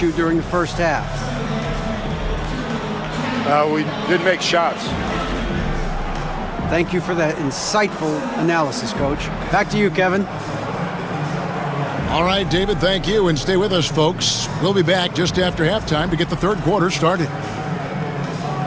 during the first half? We didn't make shots. Thank you for that insightful analysis, Coach. Back to you, Kevin. All right, David, thank you, and stay with us, folks. We'll be back just after halftime to get the third quarter started.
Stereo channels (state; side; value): identical; both; correlation 1.00